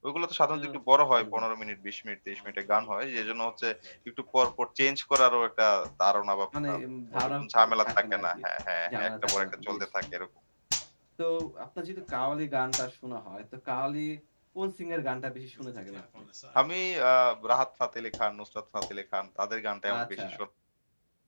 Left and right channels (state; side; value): inverted; both; correlation -1.00